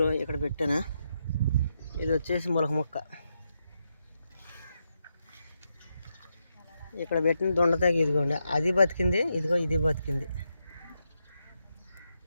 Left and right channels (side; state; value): both; inverted; correlation -0.83